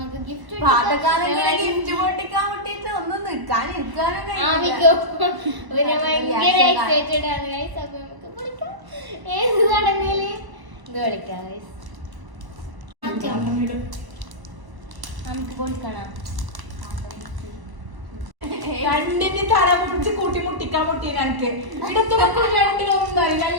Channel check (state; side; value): late; left; 1.0 ms